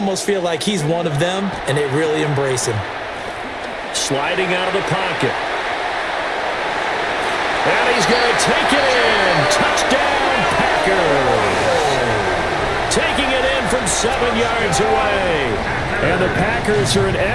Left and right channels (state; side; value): identical; both; correlation 1.00